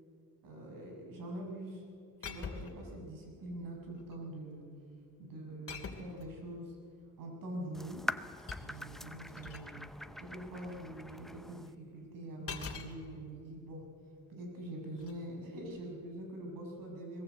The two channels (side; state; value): both; normal; correlation 0.44